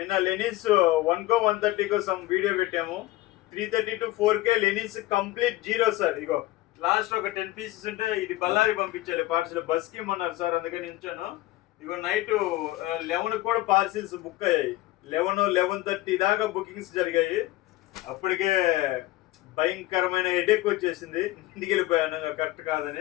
లెనిన్స్ 1 130 కోసం వీడియో పెట్టాము. 330 to 4K linens complete zero sir. Ego last ఒక 10 పీసెస్ ఉంటే ఇది బళ్ళారి పంపించాలి పార్సల్, బస్కి ఇమ్మన్నారు సార్, అందుకని ఉంచాను. ఇగో నైట్ 11 కూడా పార్సిల్స్ బుక్ అయ్యాయి. 11-11:30 దాకా బుకింగ్స్ జరిగాయి. అప్పటికే భయంకరమైన హెడేక్ వచ్చేసింది, ఇంటికి వెళ్ళిపోయాను కరెక్ట్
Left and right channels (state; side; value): quieter; right; 17.4 dB